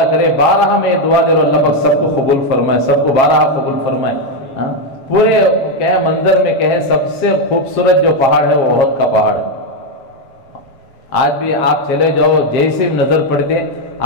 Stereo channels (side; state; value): right; late; 7.4 ms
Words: کرے 12 میں دعا دے رہا اللہ پاک سب کو قبول فرمائے، سب کو 12 قبول فرمائے. پورے کہے منظر میں کہے سب سے خوبصورت جو پہاڑ ہے وہ احد کا پہاڑ ہے. آج بھی آپ چلے جاؤ جیسے نظر پڑتے